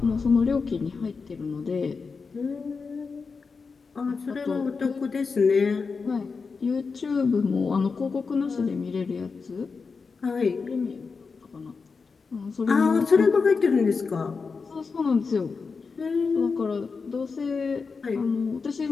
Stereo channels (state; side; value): quieter; right; 4.9 dB